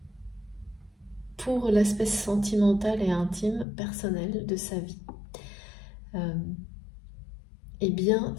pour l'aspect sentimental et intime, personnel de sa vie. Eh bien,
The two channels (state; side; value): drops out; right; at 3.7 s